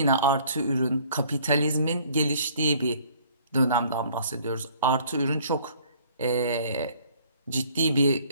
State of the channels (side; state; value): both; inverted; correlation -0.57